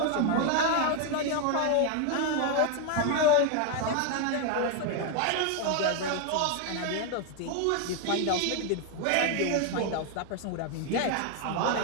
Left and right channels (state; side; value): different; both; correlation 0.01